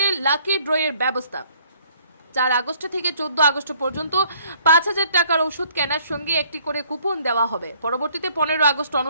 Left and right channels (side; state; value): both; inverted; correlation -0.61